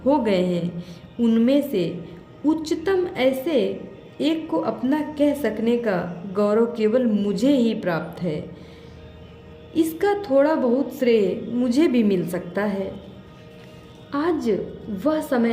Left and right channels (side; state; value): both; identical; correlation 1.00